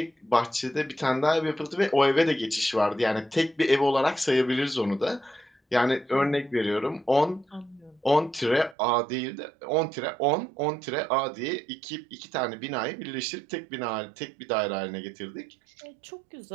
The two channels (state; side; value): drops out; left; at 8.8 s